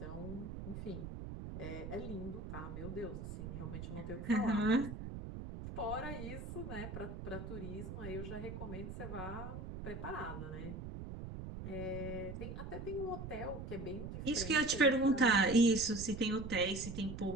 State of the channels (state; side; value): noise; right; rumble, 8 dB below the sound